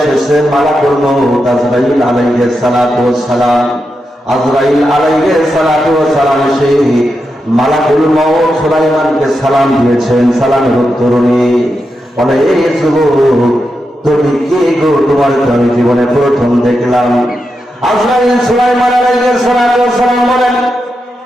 মালাকুল মউত আজরাইল আলাইহিস সালাম। আজরাইল আলাইহিস সালাম এসে মালাকুল মউত সুলাইমানকে সালাম দিয়েছেন। সালামের উত্তর নিয়ে বলে, এই যুবক তুমি কে গো? তোমার আমি জীবনে প্রথম দেখলাম। আজরাইল সুলাইমান আলাইহিস সালাম বলেন,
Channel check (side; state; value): both; normal; correlation 0.87